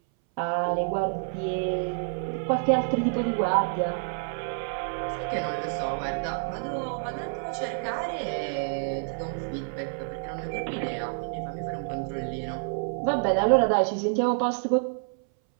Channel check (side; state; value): left; silent; 59 dB below the other